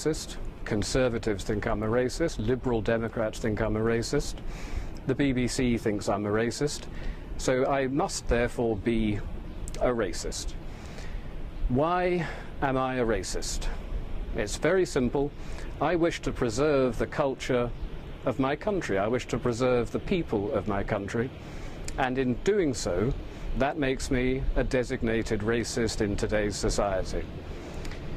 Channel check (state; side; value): identical; both; correlation 1.00